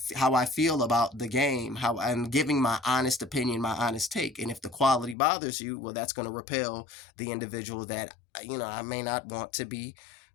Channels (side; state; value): right; drops out; at 5.2 s